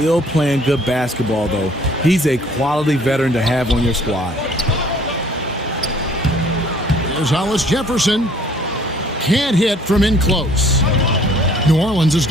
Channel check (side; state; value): both; normal; correlation 0.57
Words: playing good basketball, though. He's a quality veteran to have on your squad. There's Hollis Jefferson. Can't hit from in close. New Orleans has